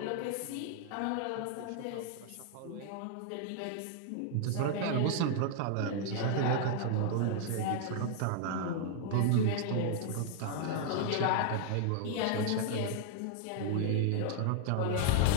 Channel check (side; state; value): both; different; correlation 0.00